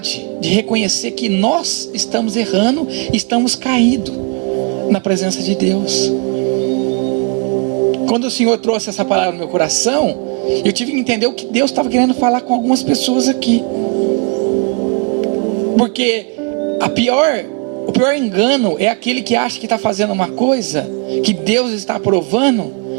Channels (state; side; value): quieter; left; 30.8 dB